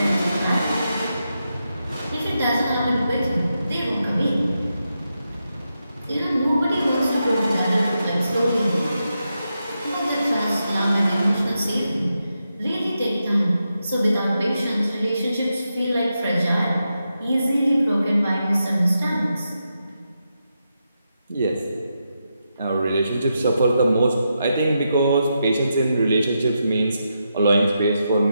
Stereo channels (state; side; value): inverted; both; correlation -0.86